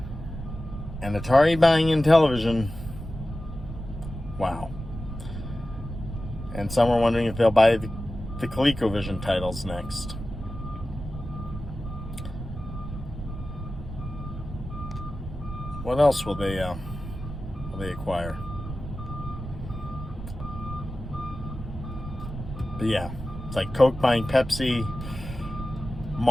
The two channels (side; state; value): right; noise; rumble, 9 dB below the sound